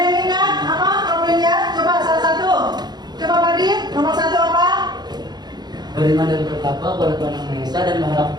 yang ingat apa profilnya? Coba salah satu. Coba Badin, nomor 1 apa? Beriman dan bertakwa kepada Tuhan Yang Maha Esa dan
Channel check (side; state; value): left; late; 0.20 ms